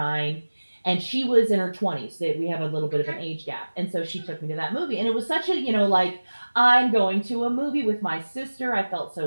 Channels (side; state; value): both; inverted; correlation -1.00